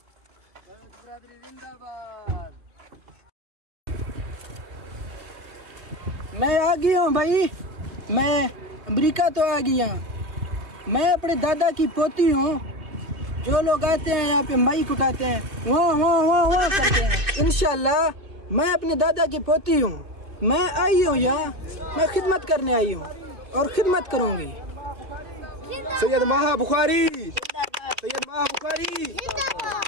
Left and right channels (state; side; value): late; left; 2.5 ms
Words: बलोच बरादरी जिंदाबाद। मैं आ गया हूँ भाई, मैं अमेरिका तो आ गया। मैं अपने दादा की पोती हूँ। जो लोग आते हैं यहाँ पे माइक उठाते हैं, वाह वाह वाह वाह करते हैं। इंशाल्लाह मैं अपने दादा की पोती हूँ। मैं आई हूँ यहाँ, मैं खिदमत करने आई हूँ और खिदमत करूँगी। सैयद माह बुखारी, सैयद माह बुखारी।